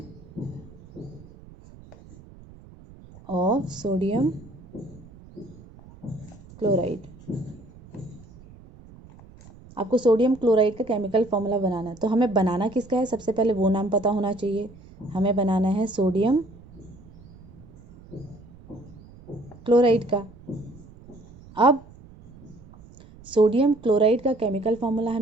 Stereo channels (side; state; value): right; noise; rumble, 21 dB below the sound